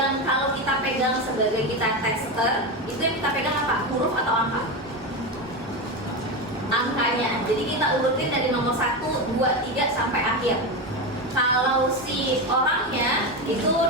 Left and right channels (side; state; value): both; normal; correlation 0.16